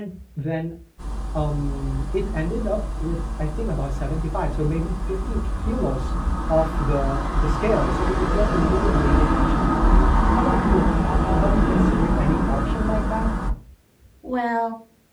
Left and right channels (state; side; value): identical; both; correlation 1.00